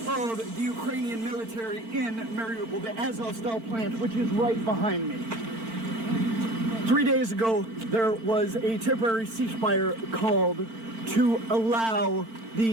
the Ukrainian military in Mariupol, the Azovstal plant, which is right behind me. 3 days ago, there was a temporary ceasefire called to allow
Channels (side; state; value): left; late; 4.4 ms